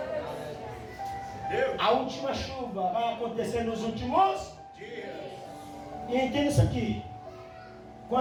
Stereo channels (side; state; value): both; identical; correlation 1.00